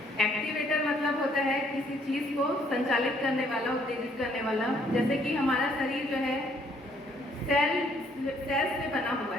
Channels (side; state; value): both; normal; correlation 0.65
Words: एक्टिवेटर मतलब होता है किसी चीज़ को संचालित करने वाला, उत्तेजित करने वाला। जैसे कि हमारा शरीर जो है सेल्स से बना हुआ